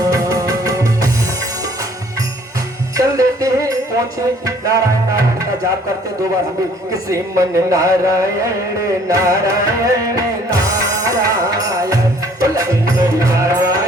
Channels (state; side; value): normal; both; correlation 0.58